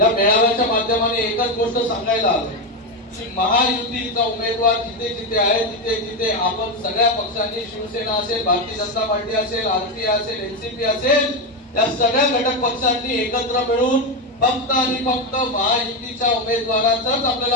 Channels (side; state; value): both; normal; correlation 0.11